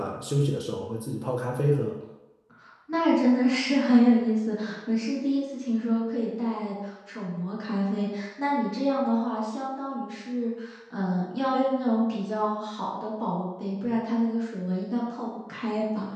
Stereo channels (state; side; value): identical; both; correlation 1.00